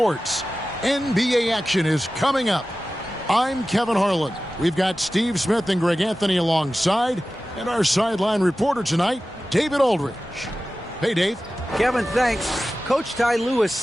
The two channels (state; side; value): normal; both; correlation 0.95